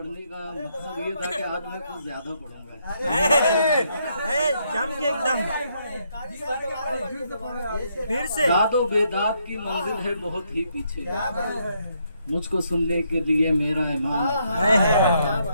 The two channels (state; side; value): inverted; both; correlation -0.75